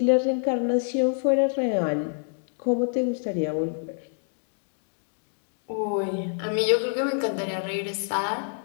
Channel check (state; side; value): silent; right; digital silence